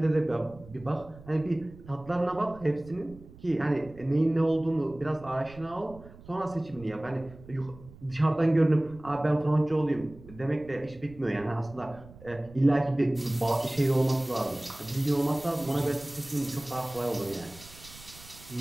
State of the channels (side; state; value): right; noise; rumble, 20 dB below the sound